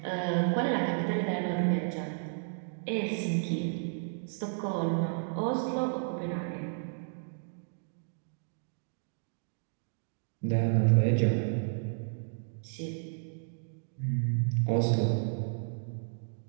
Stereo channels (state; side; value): silent; left; digital silence